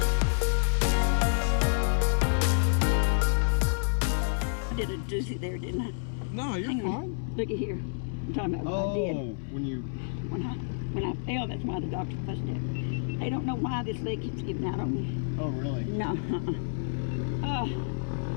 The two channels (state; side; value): silent; right; 59 dB below the other